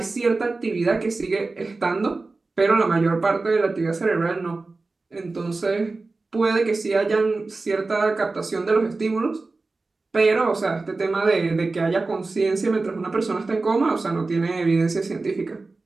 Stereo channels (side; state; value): left; quieter; 3.6 dB